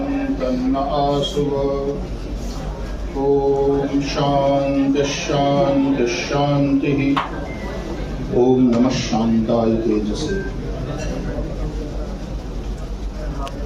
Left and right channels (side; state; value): both; identical; correlation 1.00